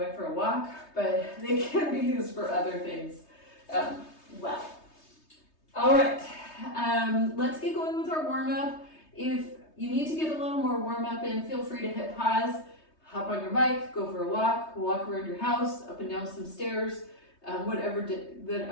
for a walk, but they can be used for other things well. All right, let's get going with our warm-up. If you need to get a little more warm-up in, feel free to hit pause, hop on your bike, go for a walk around your house, up and down some stairs, whatever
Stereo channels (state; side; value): late; right; 3.2 ms